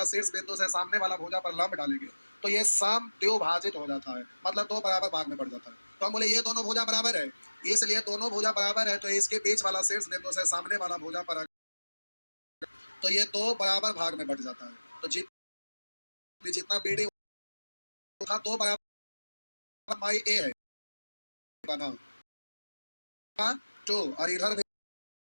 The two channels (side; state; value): both; inverted; correlation -1.00